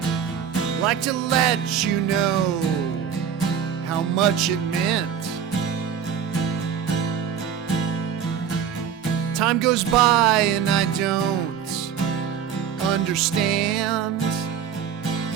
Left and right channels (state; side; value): quieter; left; 8.1 dB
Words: I'd like to let you know how much it meant. Time goes by and I don't understand,